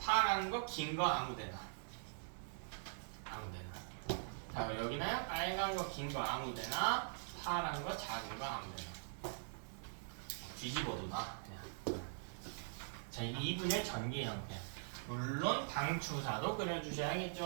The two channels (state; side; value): silent; left; digital silence